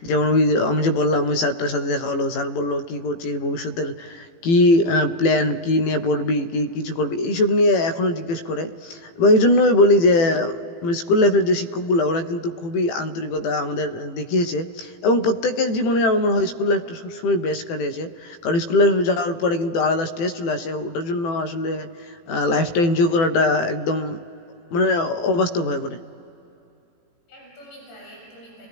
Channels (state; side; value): late; right; 18 ms